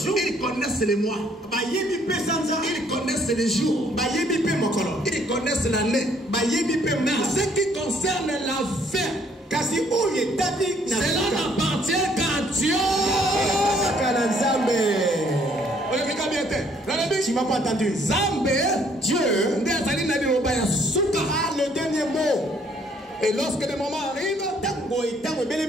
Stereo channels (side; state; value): both; normal; correlation 0.65